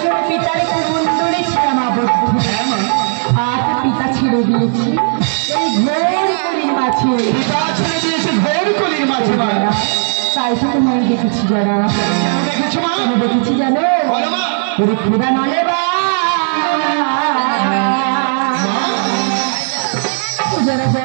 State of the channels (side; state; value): left; silent; digital silence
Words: পিতার কুমন্ডলে ছিলাম আবদ্ধ। হ্যাঁ মা, আজ পিতা ছেড়ে দিয়েছি এই ঘোর কলির মাঝে। পিতা ছেড়ে দিয়েছে ঘোর কলির মাঝে মা। তাই তো তোমায় দেখেছি যারা। কেন দেখেছো মা? কেন দেখেছি জানো? বলো মা। ওরে খোদা নলে বা যারা